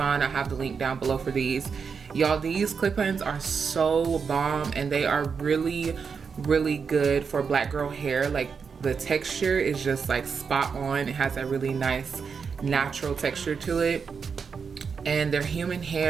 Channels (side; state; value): left; quieter; 5.9 dB